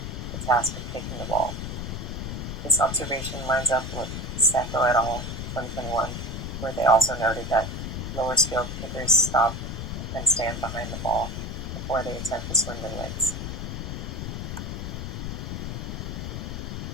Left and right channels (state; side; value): noise; left; rumble, 5 dB below the sound